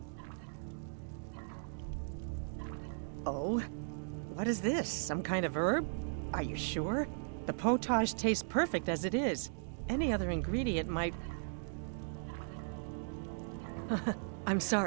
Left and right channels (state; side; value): silent; left; digital silence